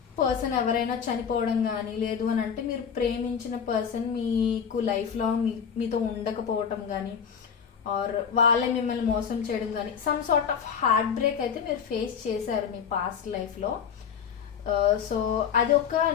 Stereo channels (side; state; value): right; quieter; 7.3 dB